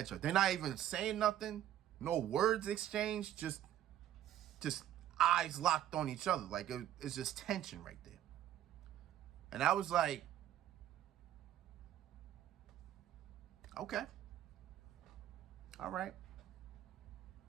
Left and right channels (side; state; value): left; quieter; 11.9 dB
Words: each other. They're not even saying nothing. No words exchanged. Just eyes locked on each other. Like it's just tension right there. And I was like, okay. All right.